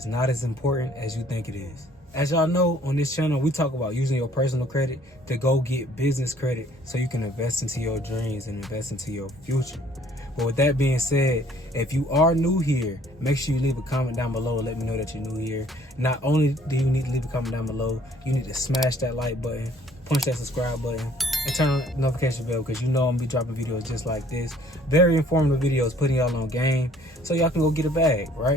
not as important as you think it is. As y'all know, on this channel we talk about using your personal credit to go get business credit so you can invest into your dreams and invest into your future. But with that being said, if you are new here, make sure you leave a comment down below. Let me know that you're new here. Not only do you need to leave a comment down below, you need to smash that like button, punch that subscribe button, and turn on the notification bell, because you know I'm gonna be dropping videos just like this. Very informative videos, putting y'all on game so y'all can go get a bag,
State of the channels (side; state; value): both; normal; correlation 0.59